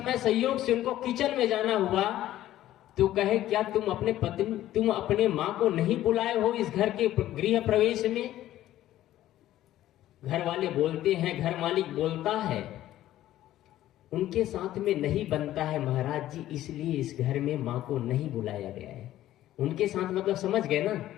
संयोग से उनको किचन में जाना हुआ तो कहे क्या तुम अपने माँ को नहीं बुलाए हो इस घर के गृह प्रवेश में? घर वाले बोलते हैं, घर मालिक बोलता है उनके साथ में नहीं बनता है महाराज जी, इसलिए इस घर में माँ को नहीं बुलाया गया है। उनके साथ मतलब समझ गए ना,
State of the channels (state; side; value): quieter; right; 13.7 dB